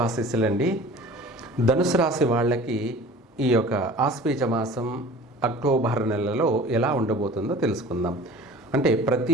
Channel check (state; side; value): normal; both; correlation 0.43